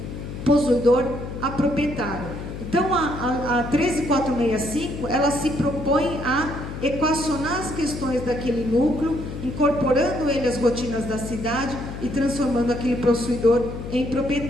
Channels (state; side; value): noise; left; hum, 8 dB below the sound